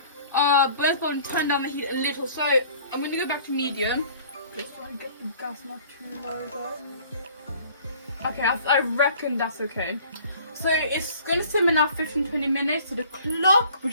both bottom turn down the heat a little. So I'm gonna go back to medium. Just try and get the gas not too low though. Okay, I reckon that's okay. So it's gonna simmer now 15-20 minutes. So the clock,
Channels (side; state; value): both; inverted; correlation -0.51